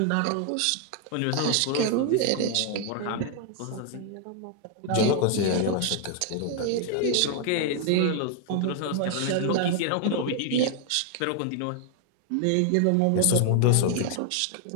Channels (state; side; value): different; both; correlation 0.00